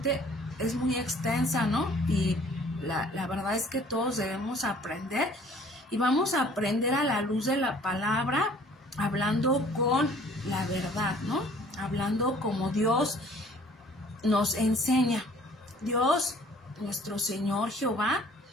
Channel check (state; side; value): normal; both; correlation 0.54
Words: es muy extensa, ¿no? Y la verdad es que todos debemos aprender. Y vamos a aprender a la luz de la palabra, hablando con la verdad, ¿no? Hablando como Dios nos enseña. Dios, nuestro Señor Jehová,